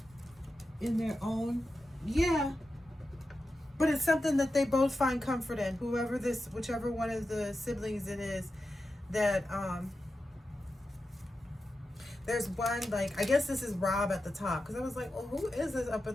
In their own. Yeah. But it's something that they both find comfort in. Whichever one of the siblings it is, that there's one, like, I guess this is Rob at the top, because I was like, well, who is this up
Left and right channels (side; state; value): both; normal; correlation 0.91